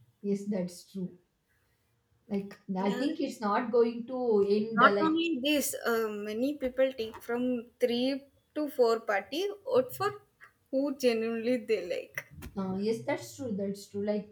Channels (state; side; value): identical; both; correlation 1.00